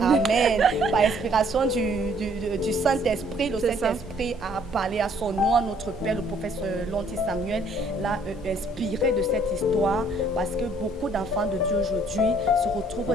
Amen. Par inspiration du Saint-Esprit. Le Saint-Esprit a parlé à son nom, à notre Père, le prophète Lonti Samuel, l'a inspiré de cette histoire parce que beaucoup d'enfants de Dieu aujourd'hui se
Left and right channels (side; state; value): both; normal; correlation 0.62